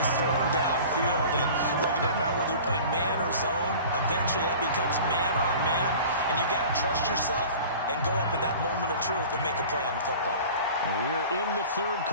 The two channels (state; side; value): inverted; both; correlation -0.41